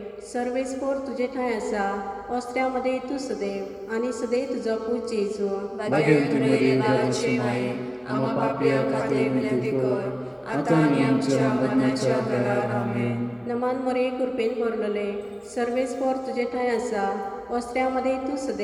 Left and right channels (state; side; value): identical; both; correlation 1.00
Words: सर्वेस्पोर तुजे ठांय आसा अस्त्र्यामध्ये तूं सदैव आनी सदैव तुजो पूत जेजू भाग्यवान मरिये देवाची माय आम्हा पापया खातीर विनंती कर आता आनी आमच्या मरणाच्या वेळार आमेन. नमान मोरे कृपेन भरलेले सर्वेस्पोर तुजे ठांय आसा अस्त्र्यामध्ये तूं